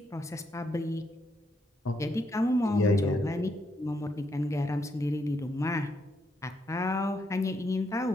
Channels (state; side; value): normal; both; correlation 0.77